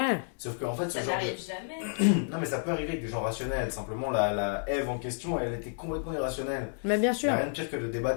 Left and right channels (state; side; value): silent; right; digital silence